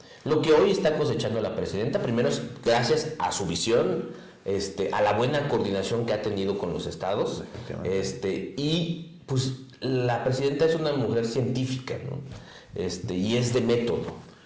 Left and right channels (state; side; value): identical; both; correlation 1.00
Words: Lo que hoy está cosechando la presidenta, primero es gracias a su visión, a la buena coordinación que ha tenido con los estados, y pues la presidenta es una mujer científica, ¿no? Y es de método.